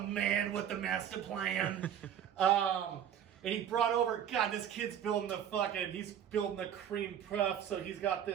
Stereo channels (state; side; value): quieter; left; 9.5 dB